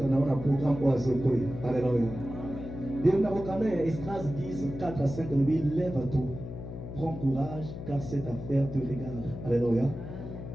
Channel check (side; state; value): left; noise; hum, 9 dB below the sound